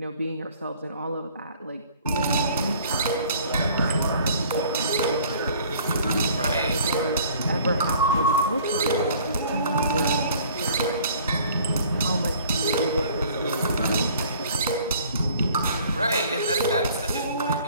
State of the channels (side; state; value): both; inverted; correlation -0.54